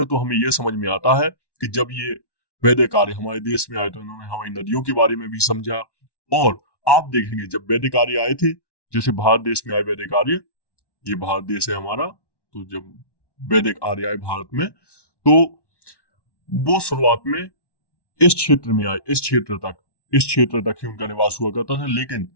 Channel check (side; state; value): right; late; 1.1 ms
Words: है। तो हमें यह समझ में आता है कि जब ये वैदिक आर्य हमारे देश में आए तो इन्होंने हमारी नदियों के बारे में भी समझा। और आप देखेंगे जब वैदिक आर्य आए थे, जैसे भारत देश में आए वैदिक आर्य, ये भारत देश है हमारा, तो जब वैदिक आर्य आए भारत में, तो वो शुरुआत में इस क्षेत्र में आए, इस क्षेत्र तक ही उनका निवास हुआ करता था। लेकिन